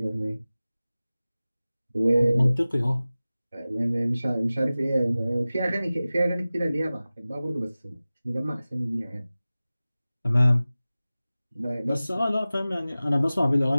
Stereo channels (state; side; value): inverted; both; correlation -0.97